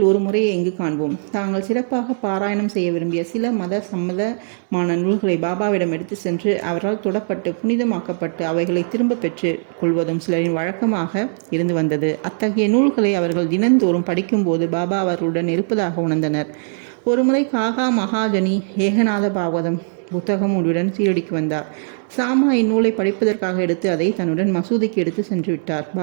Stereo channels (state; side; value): silent; left; digital silence